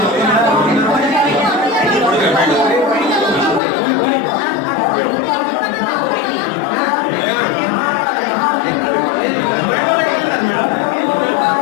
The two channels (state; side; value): drops out; right; at 3.6 s